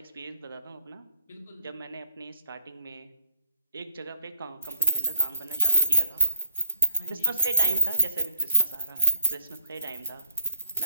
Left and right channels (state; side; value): inverted; both; correlation -0.65